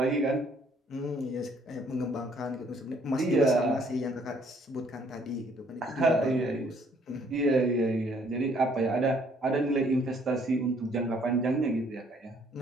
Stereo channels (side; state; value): both; normal; correlation 0.63